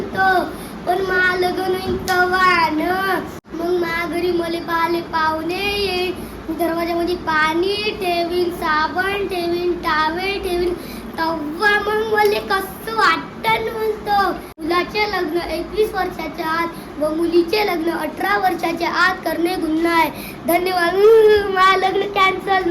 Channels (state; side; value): identical; both; correlation 1.00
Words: पण मा लगन होईन तव्हा न मग मा घरी मले पाले पाहुणे येईल. दरवाजामध्ये पाणी ठेवीन, साबण ठेवीन, टावेल ठेवीन. तव्हा मग मले कसं वाटतं म्हणतो. मुलाचे लग्न 21 वर्षाच्या आत व मुलीचे लग्न 18 वर्षाच्या आत करणे गुन्हा आहे. धन्यवाद. मा लग्न कॅन्सल